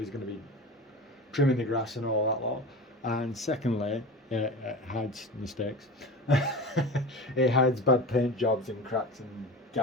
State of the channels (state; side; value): normal; both; correlation 0.31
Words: going to be trimming the grass and all that lot. And secondly, it hides mistakes. It hides bad paint jobs and cracks and